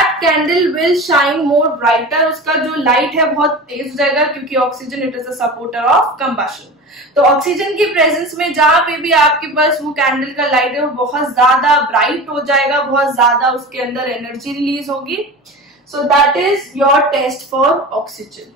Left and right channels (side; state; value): both; normal; correlation 0.32